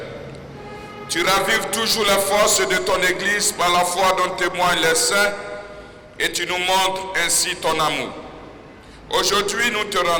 Tu ravives toujours la force de ton Église par la foi dont témoignent les saints et tu nous montres ainsi ton amour. Aujourd'hui, nous te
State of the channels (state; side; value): identical; both; correlation 1.00